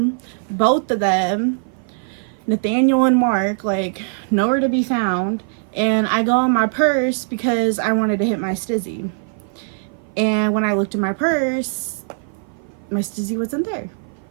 both of them, Nathaniel and Mark, like, nowhere to be found. And I go in my purse because I wanted to hit my stizzy. And when I looked in my purse, my stizzy wasn't there.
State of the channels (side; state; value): left; silent; 55 dB below the other